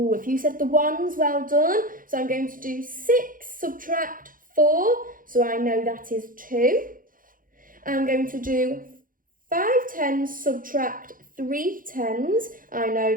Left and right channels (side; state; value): left; late; 0.40 ms